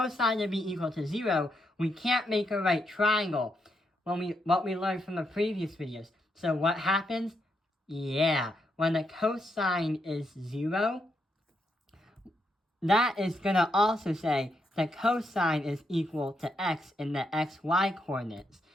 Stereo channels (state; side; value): normal; both; correlation 0.80